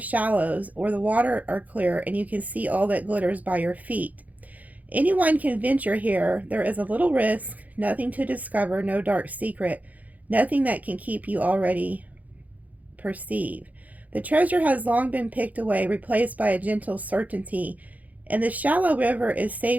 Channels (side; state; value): left; late; 0.077 ms